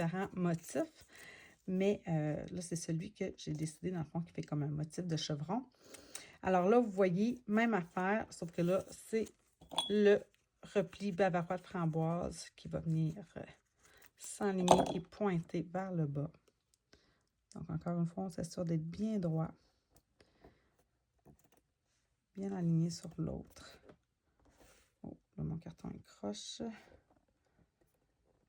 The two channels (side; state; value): both; identical; correlation 1.00